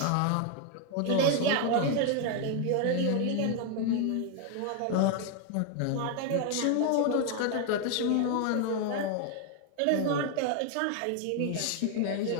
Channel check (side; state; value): both; different; correlation 0.01